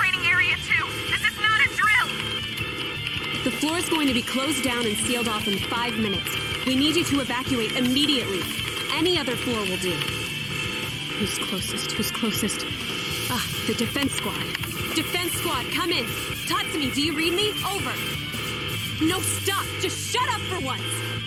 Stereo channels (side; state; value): both; identical; correlation 1.00